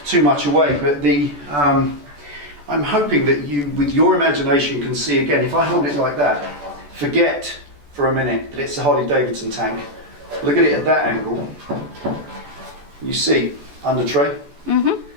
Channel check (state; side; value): late; left; 14 ms